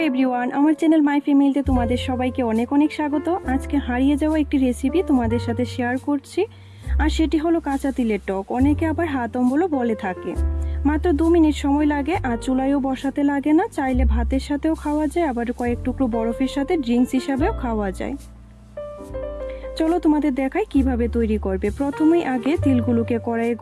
everyone, আমার channel my ফ্যামিলিতে তোমাদের সবাইকে অনেক অনেক স্বাগত। আজকে হারিয়ে যাওয়া একটি রেসিপি তোমাদের সাথে শেয়ার করছি, আর সেটি হলো কাঁচা তিলের টক। অনেকে আবার হাত অম্বলও বলে থাকে। মাত্র 2 মিনিট সময় লাগে, আর চুলায়ও বসাতে লাগে না। চাইলে ভাতের সাথেও খাওয়া যায়, আবার কয়েক টুকরো বরফের সাথে ড্রিঙ্কস হিসাবেও খাওয়া যায়। চলো তোমাদের দেখাই কিভাবে তৈরি করবে। প্রথমেই আগে তিলগুলোকে কড়াইয়ে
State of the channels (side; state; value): both; identical; correlation 1.00